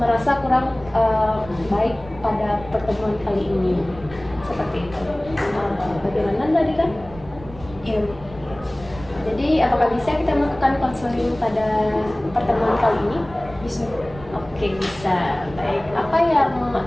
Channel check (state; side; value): noise; right; rumble, 18 dB below the sound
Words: merasa kurang baik pada pertemuan kali ini. Seperti itu. Bagaimana Nadira? Iya. Jadi apakah bisa kita melakukan konseling pada pertemuan kali ini? Bisa. Oke, bisa. Baik. Apa yang